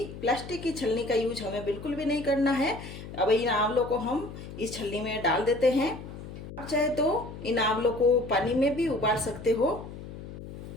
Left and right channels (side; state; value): left; noise; hum, 12 dB below the sound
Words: प्लास्टिक की छलनी का यूज हमें बिल्कुल भी नहीं करना है। अब इन आंवलों को हम इस छलनी में डाल देते हैं। आप चाहे तो इन आंवलों को पानी में भी उबाल सकते हो।